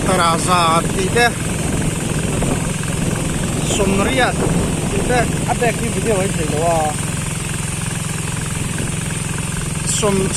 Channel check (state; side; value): identical; both; correlation 1.00